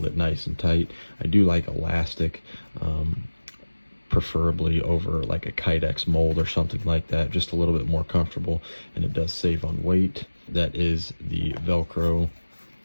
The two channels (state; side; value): inverted; both; correlation -1.00